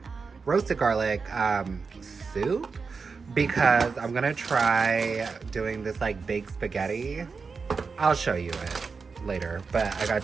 roasted garlic soup. Because I'm gonna try doing this like baked spaghetti. I'll show you it later, but I got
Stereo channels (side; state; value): left; quieter; 4.9 dB